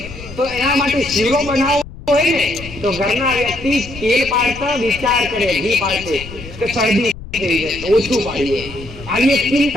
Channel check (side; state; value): left; noise; rumble, 14 dB below the sound